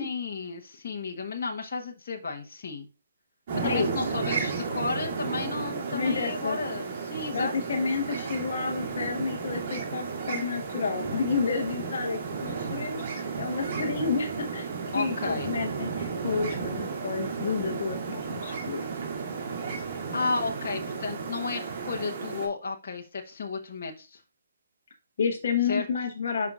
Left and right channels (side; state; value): both; inverted; correlation -0.65